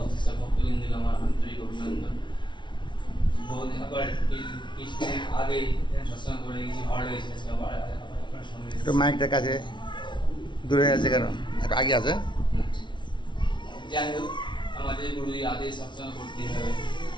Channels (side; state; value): right; late; 0.23 ms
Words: সব ভক্তবৃন্দকে আমার আন্তরিক অভিনন্দন। বহু দিন আবার কিছুদিন আগে সৎসঙ্গ করে গেছি, ভালো লেগেছে। আজকে আবার আপনার সঙ্গে একটু মাইকটার কাছে দূরে আছে কেন, একটু আগে আছে। যাই হোক, আমাদের গুরুজি আদেশ সৎসঙ্গ করতে হবে